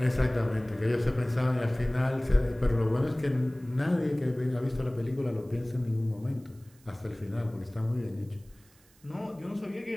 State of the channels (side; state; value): right; noise; hiss, 30 dB below the sound